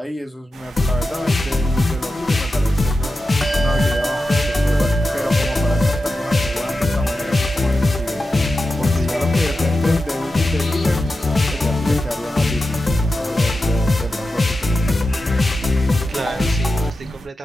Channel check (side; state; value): both; normal; correlation 0.91